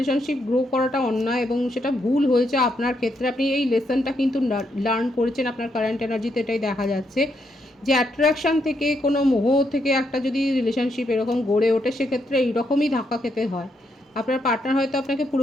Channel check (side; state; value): both; normal; correlation 0.78